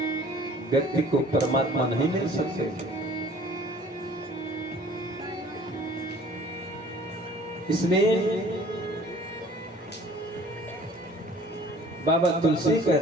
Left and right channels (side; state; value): both; normal; correlation 0.51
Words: व्यक्ति को परमात्मा नहीं मिल सकते। इसलिए बाबा तुलसी